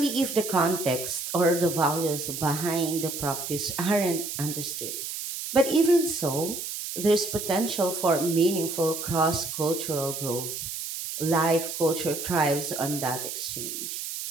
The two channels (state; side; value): noise; right; hiss, 6 dB below the sound